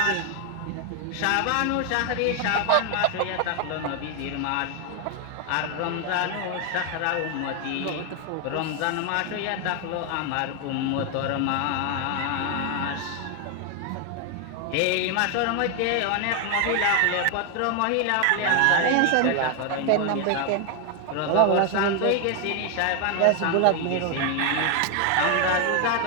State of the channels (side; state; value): both; different; correlation 0.01